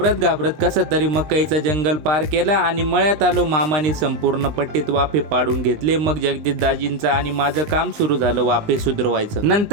कसं तरी मकईचं जंगल पार केला आणि मळ्यात आलो. मामाने संपूर्ण पट्टीत वाफे पाडून घेतले. मग जगदीश दाजींचं आणि माझं काम सुरू झालं वाफे सुधरवायचं.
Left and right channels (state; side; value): late; left; 20 ms